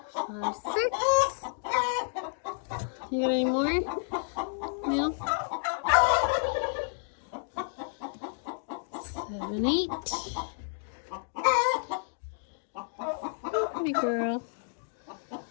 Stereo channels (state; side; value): silent; right; digital silence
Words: 5, 6. You got any more? No? 7, 8. Pretty girl.